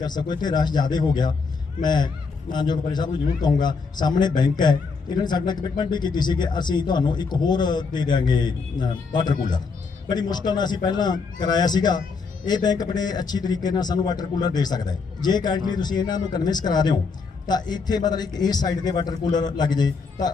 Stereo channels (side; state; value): right; quieter; 4.9 dB